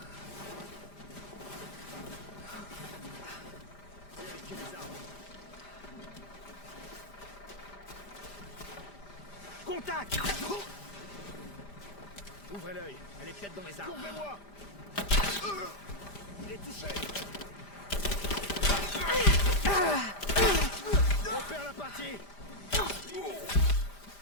Vérifiez les armes. Contact! Ouvrez l'œil, elle est peut-être dans les arbres. Couvrez-moi! Il est touché! On perd la partie!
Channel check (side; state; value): right; late; 5.0 ms